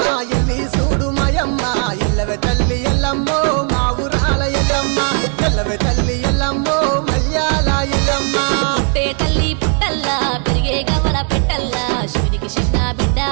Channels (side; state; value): left; quieter; 39.8 dB